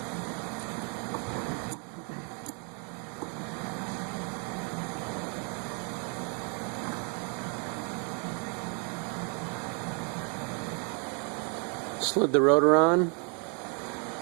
Slid the rotor on.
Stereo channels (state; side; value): quieter; left; 37.7 dB